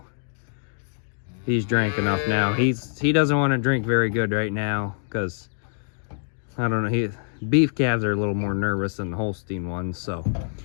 he's drank enough now. He doesn't want to drink very good right now because I don't know, beef calves are a little more nervous than the Holstein ones. So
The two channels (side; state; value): right; silent; digital silence